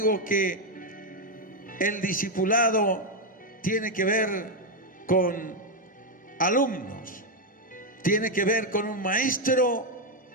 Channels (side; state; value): both; normal; correlation 0.03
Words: que el discipulado tiene que ver con alumnos, tiene que ver con un maestro